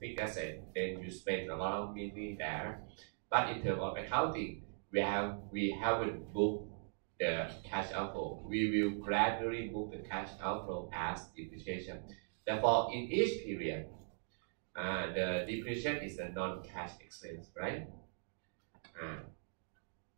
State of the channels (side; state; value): left; silent; digital silence